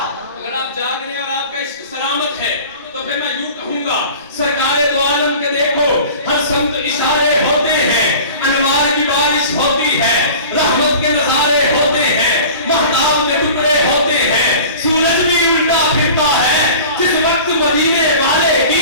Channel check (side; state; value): both; inverted; correlation -0.40